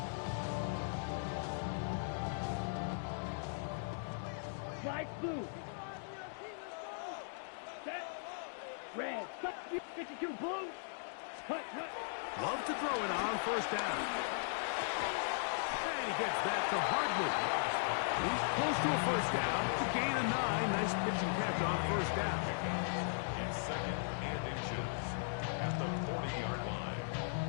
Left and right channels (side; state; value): right; silent; digital silence